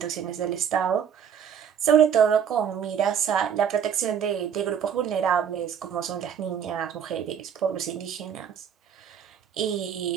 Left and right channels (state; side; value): quieter; left; 8.1 dB